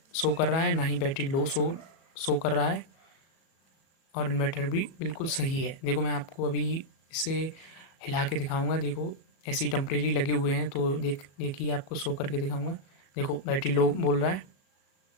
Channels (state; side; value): late; right; 37 ms